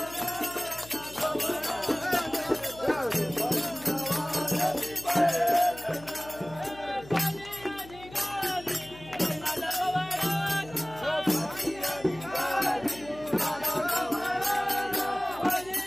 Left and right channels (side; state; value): left; noise; hum, 18 dB below the sound